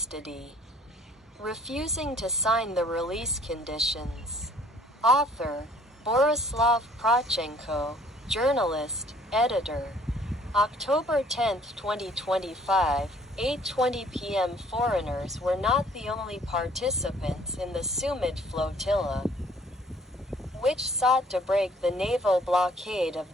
refusing to sign the release conditions. Author, Borislav Protchenko, journalist, editor. October 10, 2025, 8:20 p.m. Foreigners were not the only participants in the Sumud Flotilla, which sought to break the naval blockade of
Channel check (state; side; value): normal; both; correlation 0.57